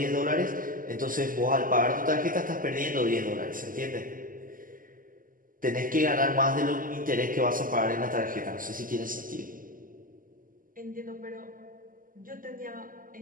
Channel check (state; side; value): late; left; 0.40 ms